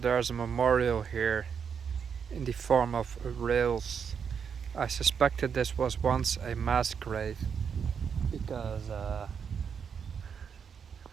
a memorial here in the form of rails. I suspected this was once a mass grave because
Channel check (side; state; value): left; quieter; 6.9 dB